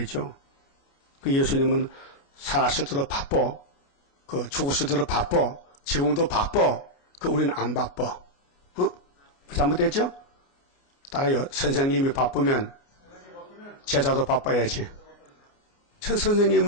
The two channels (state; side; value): late; right; 29 ms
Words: 그 예수님은 살았을 때도 바빠. 그 죽었을 때도 바빠. 지금도 바빠. 그 우리는 안 바빠. 잘못됐죠? 따라요. 선생님이 바쁘면 제자도 바빠야지. 천